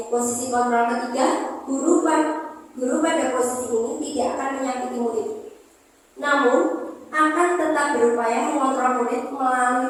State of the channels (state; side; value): identical; both; correlation 1.00